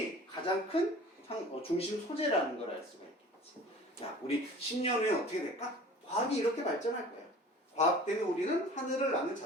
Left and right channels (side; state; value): both; normal; correlation 0.44